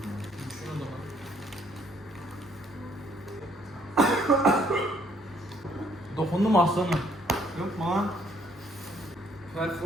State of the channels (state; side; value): normal; both; correlation 0.65